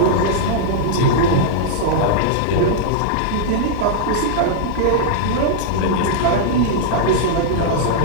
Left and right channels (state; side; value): different; both; correlation -0.01